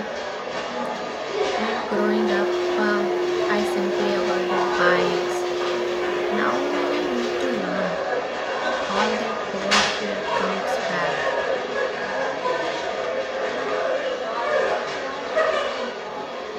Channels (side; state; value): both; identical; correlation 1.00